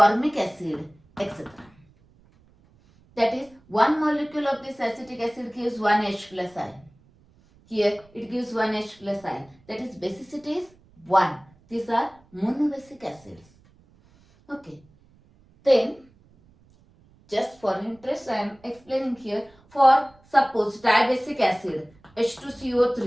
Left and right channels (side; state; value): right; noise; rumble, 30 dB below the sound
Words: acid, etc. That is, one molecule of this acetic acid gives 1 H plus ion. Here it gives 1 H plus ion. That is, basicity is 1. These are monobasic acids. Okay. Then, just for interest, I am explaining here. For suppose dibasic acid